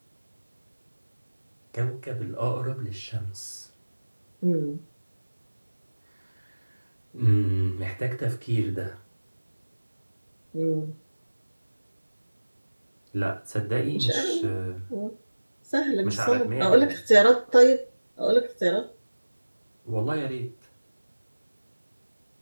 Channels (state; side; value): inverted; both; correlation -1.00